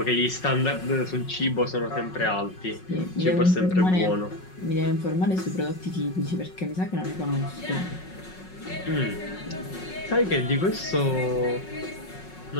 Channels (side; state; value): right; late; 5.4 ms